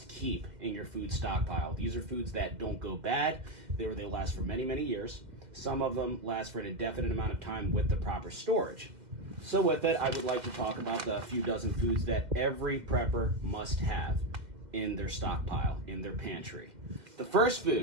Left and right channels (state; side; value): late; left; 2.1 ms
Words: keep in your food stockpile. These are foods that don't go bad. They last for many, many years. Some of them last for an indefinite amount of time with the proper storage. So with it, I would like to talk about the few dozen foods that every prepper must have in their stockpile, in their pantry. The first